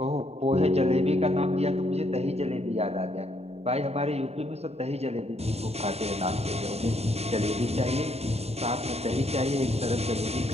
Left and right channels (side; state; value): left; late; 0.30 ms